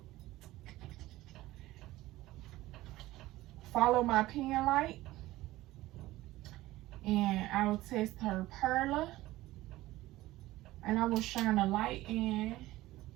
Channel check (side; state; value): left; quieter; 17.2 dB